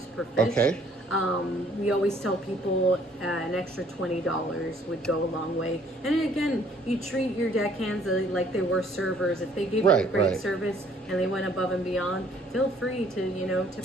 per fish. Okay. We always tell people an extra $20 would go a long way. And again, you treat your deckhands like they were servers. If they gave you a great service and they went above and beyond, feel free to, you know, tip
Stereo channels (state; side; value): normal; both; correlation 0.60